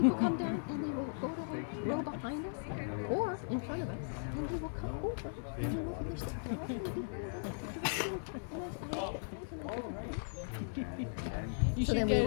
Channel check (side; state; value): right; silent; 53 dB below the other